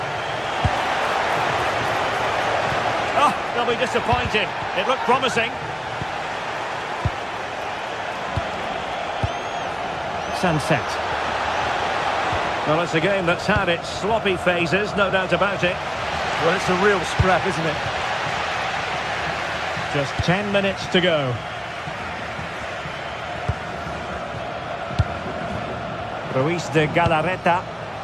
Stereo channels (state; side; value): identical; both; correlation 1.00